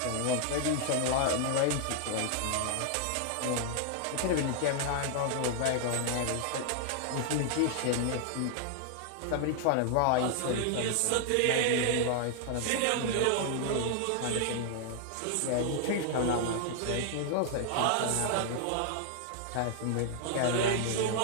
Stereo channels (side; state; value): both; different; correlation 0.00